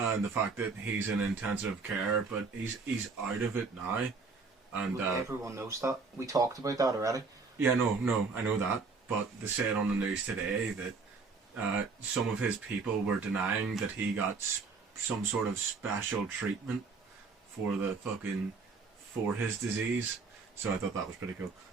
the fact that he's in intensive care, but he's out of it now. And everyone knows that. We talked about that already. Yeah, no, I know that. But they said on the news today that some of his people were denying that he got some sort of special treatment for his disease. So I thought that was pretty cool,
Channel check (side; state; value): left; quieter; 4.4 dB